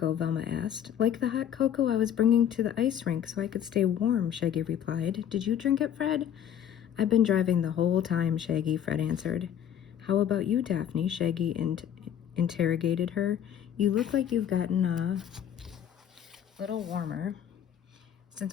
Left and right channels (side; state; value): right; quieter; 9.6 dB